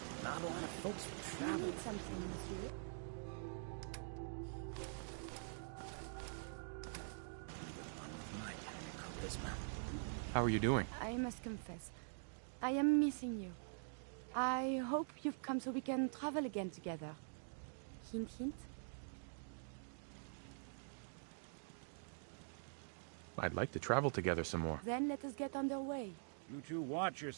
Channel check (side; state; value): left; silent; digital silence